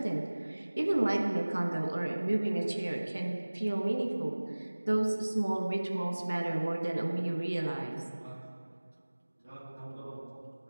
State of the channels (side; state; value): both; inverted; correlation -1.00